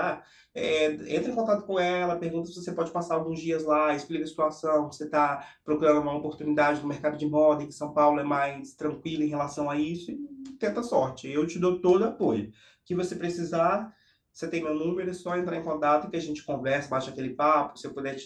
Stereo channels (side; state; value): both; identical; correlation 1.00